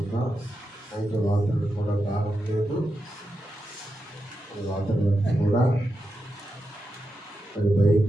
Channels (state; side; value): normal; both; correlation 0.88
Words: అయితే వాతావరణం కూడా బాగుండలేదు. వాతావరణం కూడా అది